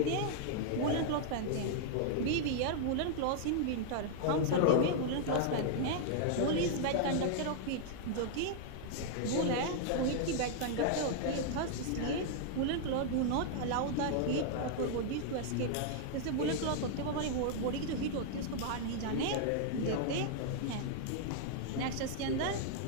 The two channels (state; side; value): different; both; correlation -0.01